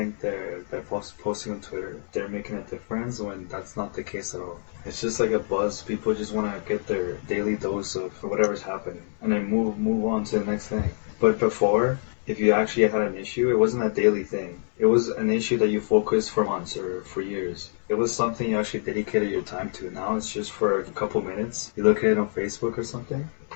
they're posting on Twitter, they're making a difference when that's not the case at all. It's just like a buzz. People just want to get their daily dose of whatever's happening and then move on to the next thing. But before, if you actually had an issue, it wasn't a daily thing. It was an issue that you focused for months or for years. It was something you actually dedicated your time to. Now it's just for a couple minutes. You look at it on Facebook or something,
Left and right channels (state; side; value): silent; right; 61 dB below the other